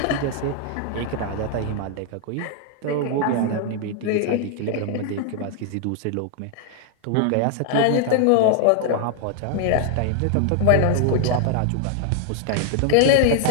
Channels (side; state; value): both; different; correlation 0.00